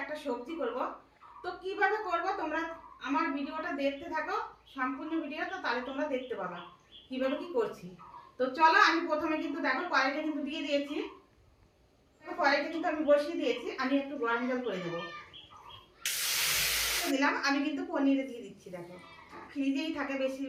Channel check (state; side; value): identical; both; correlation 1.00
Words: একটা সবজি করব। তো কিভাবে করব তোমরা আমার ভিডিওটা দেখতে থাকো, সম্পূর্ণ ভিডিওটা, তাহলে তোমরা দেখতে পাবা কিভাবে কি করছি। তো চলো আমি প্রথমে কিন্তু দেখো কড়াইটা কিন্তু দিয়ে দিয়েছি। কড়াইটা কিন্তু আমি বসিয়ে দিয়েছি, আমি একটু গরম জল করে দেবো দিলাম। আমি কিন্তু পনিরে দিয়ে দিচ্ছি। দেখো ফ্রিজেই থাকে